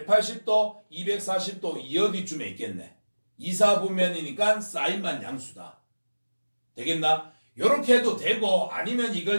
240도 이 어디쯤에 있겠네. 2, 4분면이니까 사인만 양수다. 되겠나? 요렇게 해도 되고 아니면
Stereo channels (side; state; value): both; inverted; correlation -1.00